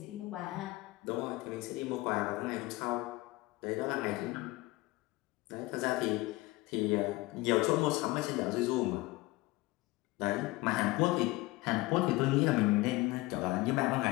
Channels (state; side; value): quieter; right; 20.6 dB